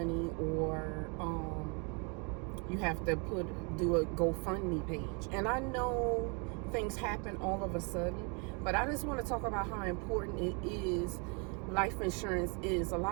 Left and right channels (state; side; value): quieter; left; 34.5 dB